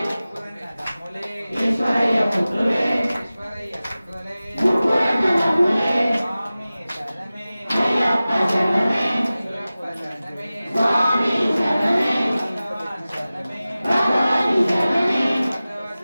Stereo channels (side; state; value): both; inverted; correlation -0.97